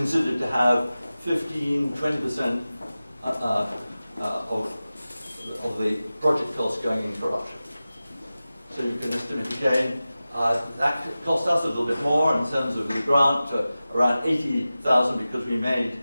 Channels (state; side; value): inverted; both; correlation -0.95